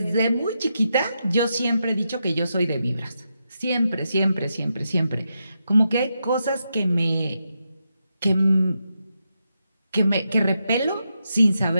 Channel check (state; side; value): inverted; both; correlation -0.85